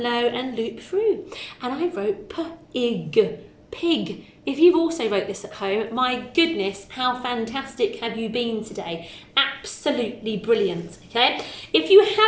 low, and loop through. And I wrote p-ig, pig. If you've also wrote this at home, my goodness, how fantastic have you been today? Absolutely brilliant, okay? If you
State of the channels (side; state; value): both; identical; correlation 1.00